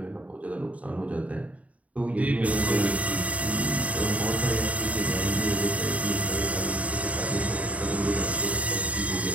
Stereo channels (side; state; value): left; late; 0.068 ms